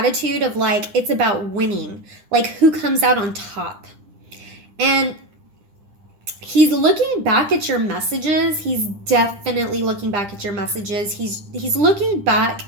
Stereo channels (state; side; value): late; left; 9.9 ms